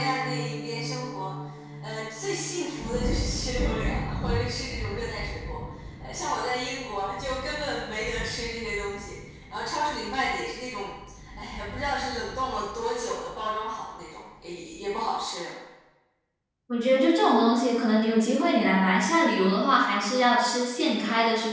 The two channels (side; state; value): both; identical; correlation 1.00